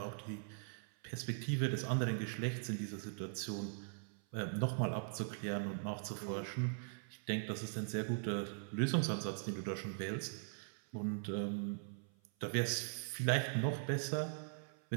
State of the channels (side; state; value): left; silent; 50 dB below the other